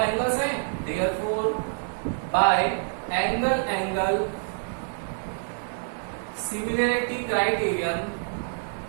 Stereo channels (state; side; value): silent; left; digital silence